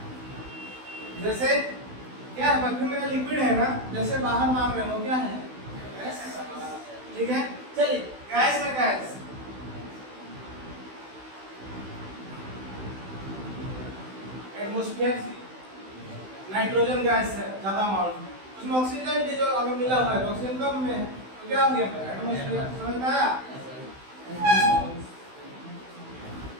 जैसे क्या है, परफ्यूम मेरा लिक्विड है ना, जैसे बाहर मार रहे हो क्या है, गैस, ठीक है। चलिए गैस में गैस, एटमॉस्फेयर से नाइट्रोजन गैस है ज्यादा अमाउंट में, उसमें ऑक्सीजन जो अगर मिला हुआ है, ऑक्सीजन कम में, तो क्या हो गया एटमॉस्फेयर, समझ में आया।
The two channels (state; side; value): late; left; 16 ms